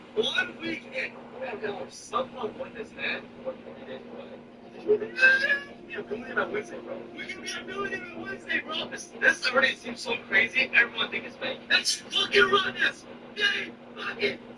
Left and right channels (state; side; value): identical; both; correlation 1.00